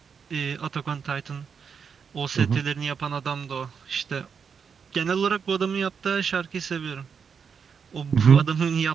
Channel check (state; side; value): quieter; left; 6.4 dB